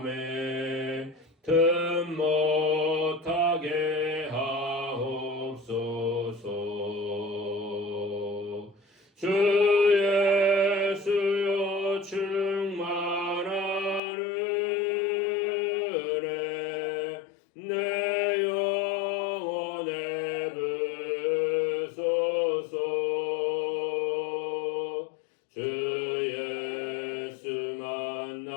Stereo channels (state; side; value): drops out; right; at 14.0 s